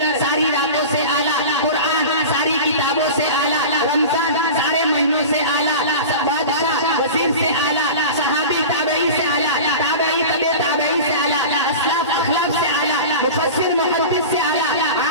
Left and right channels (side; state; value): both; inverted; correlation -0.32